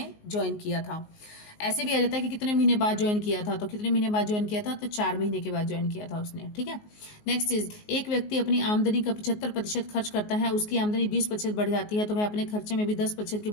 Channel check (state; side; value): late; right; 19 ms